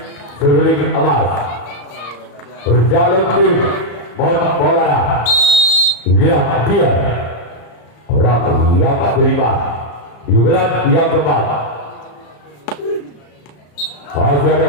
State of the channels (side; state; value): right; late; 34 ms